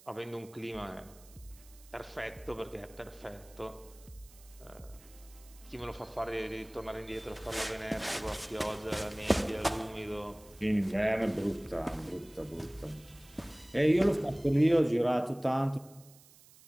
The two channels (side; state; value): right; noise; hiss, 24 dB below the sound